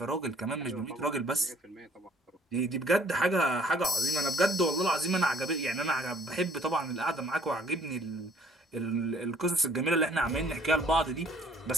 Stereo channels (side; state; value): both; normal; correlation 0.59